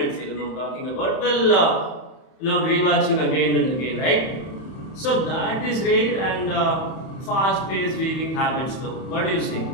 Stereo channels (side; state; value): right; late; 31 ms